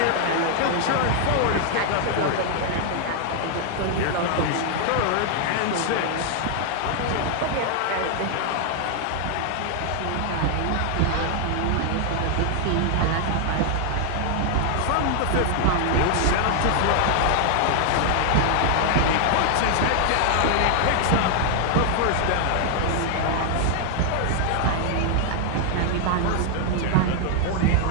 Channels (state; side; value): different; both; correlation 0.00